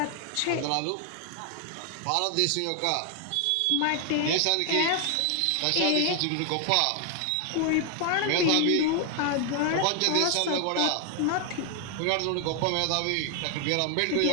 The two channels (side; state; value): both; different; correlation 0.00